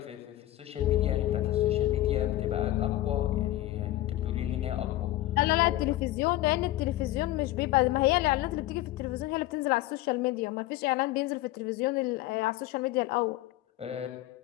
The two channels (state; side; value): quieter; right; 15.8 dB